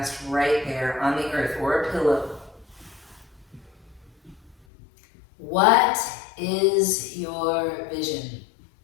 right there on the earth or a pillow. What is your vision?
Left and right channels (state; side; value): drops out; right; at 4.5 s